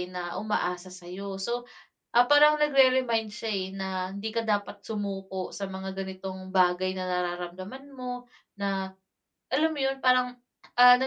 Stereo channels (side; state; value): both; identical; correlation 1.00